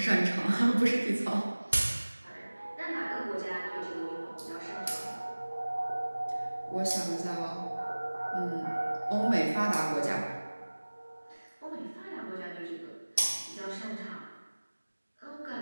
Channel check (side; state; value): both; inverted; correlation -1.00